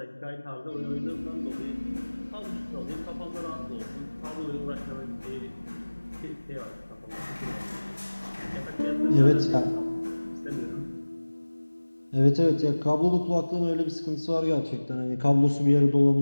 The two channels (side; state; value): both; inverted; correlation -1.00